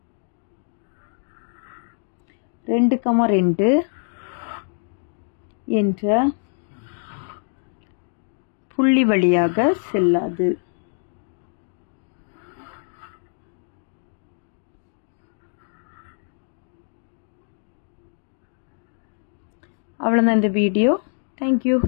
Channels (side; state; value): right; silent; digital silence